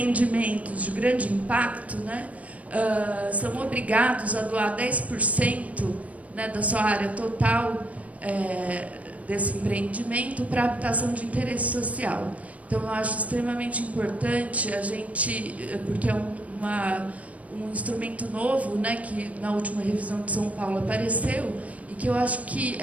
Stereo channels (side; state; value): left; late; 0.068 ms